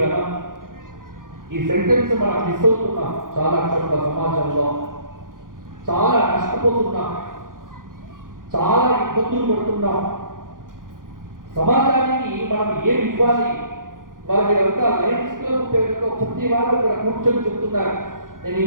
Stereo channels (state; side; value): late; left; 0.90 ms